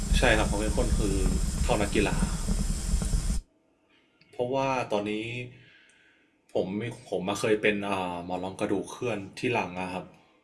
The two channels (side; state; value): both; identical; correlation 1.00